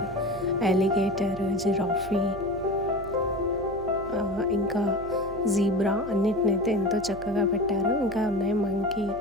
alligator, giraffe, ఇంకా జీబ్రా అన్నిటినైతే ఎంతో చక్కగా పెట్టారు. ఇంకా ఉన్నాయి మంకీ,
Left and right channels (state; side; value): noise; right; hum, 15 dB below the sound